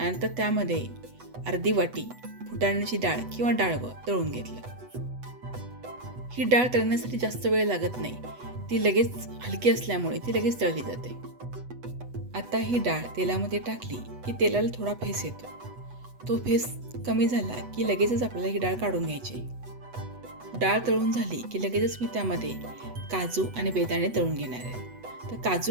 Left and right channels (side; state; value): left; late; 8.1 ms